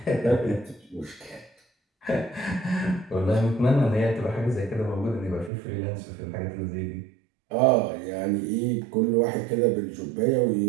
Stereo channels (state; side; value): drops out; left; at 5.5 s